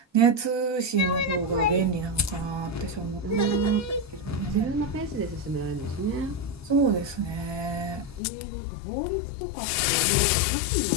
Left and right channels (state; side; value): drops out; right; at 8.2 s